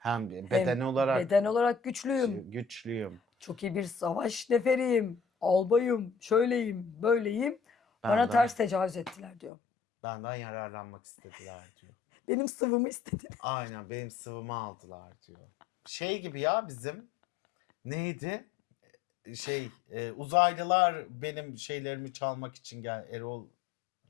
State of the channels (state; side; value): drops out; right; at 9.5 s